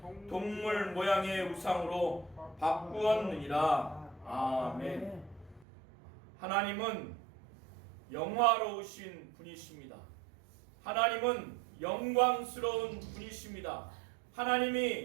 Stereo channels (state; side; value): drops out; left; at 5.7 s